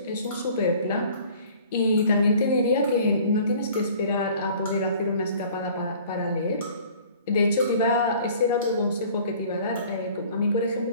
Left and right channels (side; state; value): both; inverted; correlation -0.50